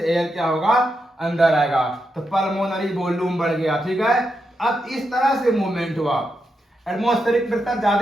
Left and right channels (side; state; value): both; normal; correlation 0.85